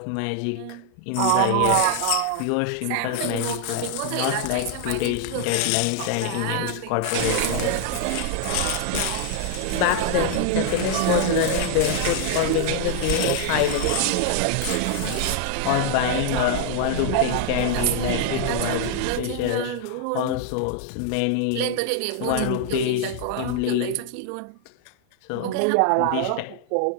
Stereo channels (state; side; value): different; both; correlation 0.00